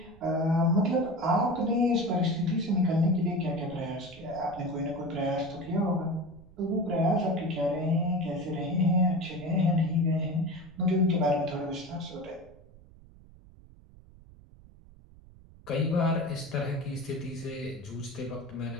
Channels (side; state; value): right; noise; rumble, 22 dB below the sound